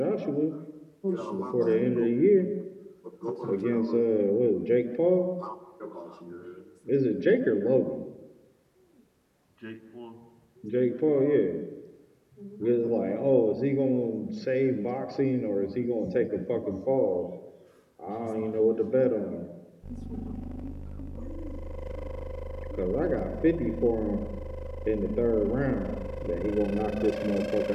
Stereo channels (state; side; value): identical; both; correlation 1.00